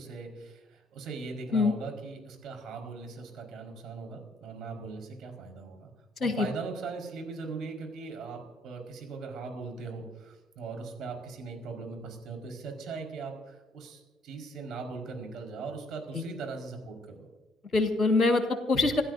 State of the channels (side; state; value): both; normal; correlation 0.66